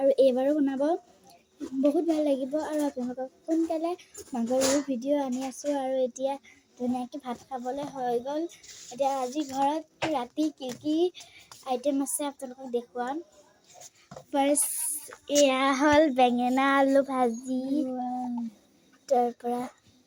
এইবাৰো বনাব। বহুত ভাল লাগিব আৰু আপোনালোকক সোনকালে মাঘৰ বিহুৰ ভিডিঅ' আনি আছোঁ আৰু এতিয়া ধুনীয়াকৈ ভাত খাবলৈ হৈ গ'ল। এতিয়া আজি ঘৰত ৰাতি কি আইটেম আছে আপোনালোকক দেখুৱাম। ফাৰ্ষ্ট এয়া হ'ল বেঙেনা আলু ভাজি, তাৰপৰা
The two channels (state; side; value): identical; both; correlation 1.00